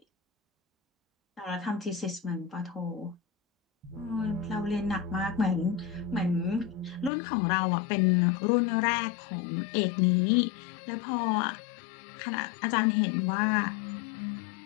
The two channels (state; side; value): drops out; right; at 7.1 s